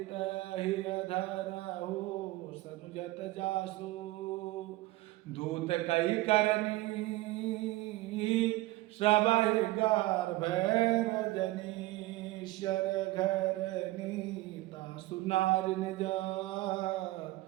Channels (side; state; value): left; quieter; 18.7 dB